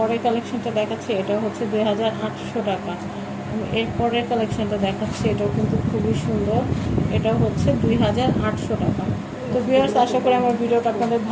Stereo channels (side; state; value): both; identical; correlation 1.00